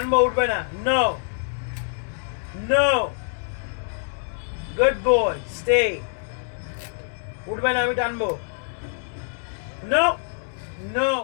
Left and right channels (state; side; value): silent; right; digital silence